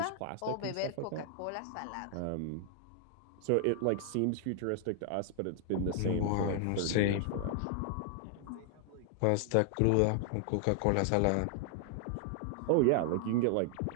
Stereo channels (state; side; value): different; both; correlation 0.00